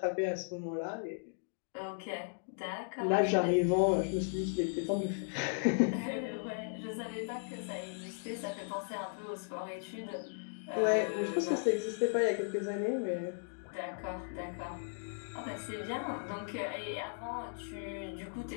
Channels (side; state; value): right; silent; digital silence